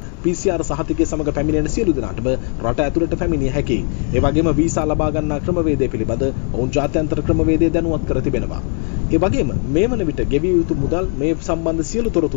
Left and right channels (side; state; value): right; quieter; 37.2 dB